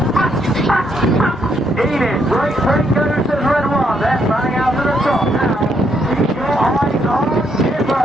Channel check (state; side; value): normal; both; correlation 0.74